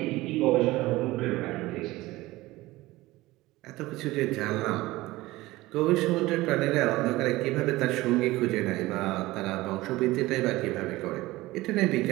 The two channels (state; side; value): quieter; left; 18.9 dB